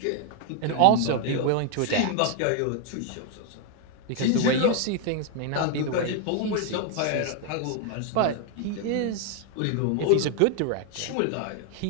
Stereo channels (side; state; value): both; different; correlation 0.01